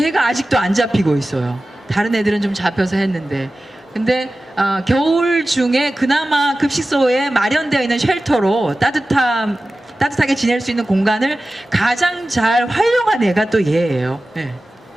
아직도 안 잡히고 있어요. 다른 애들은 좀 잡혀서 했는데, 근데 겨울 중에 그나마 급식소에 마련되어 있는 쉘터로 따뜻하게 지낼 수 있는 공간을 가장 잘 활용한 애가 또 얘예요. 네.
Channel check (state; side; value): normal; both; correlation 0.96